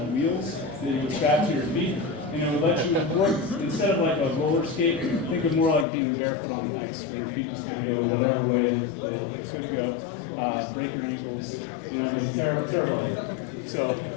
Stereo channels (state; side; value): drops out; right; at 5.9 s